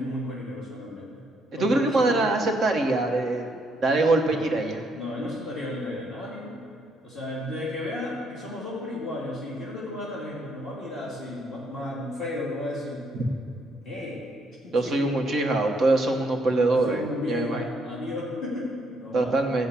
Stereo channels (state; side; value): normal; both; correlation 0.72